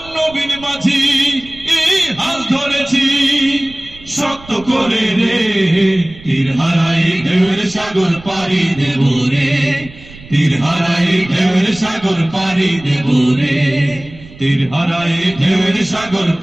নবীন মাঝি হাল ধরেছি শক্ত করে রে, তীর হারায়ে ঢেউয়ের সাগর পাড়ি দেব রে, তীর হারায়ে ঢেউয়ের সাগর পাড়ি দেব রে, তীর হারায়ে ঢেউয়ের সাগর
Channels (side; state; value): right; noise; rumble, 20 dB below the sound